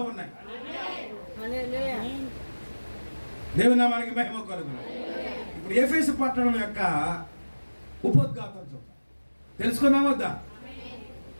ఉన్నాయి. దేవుని నామానికి మహిమ కలుగును. ఇప్పుడు ఎఫెసు పట్టణం యొక్క ఉపోద్ఘాతం చూద్దాం, తెలుసుకుందాం వద్దా?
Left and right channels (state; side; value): inverted; both; correlation -1.00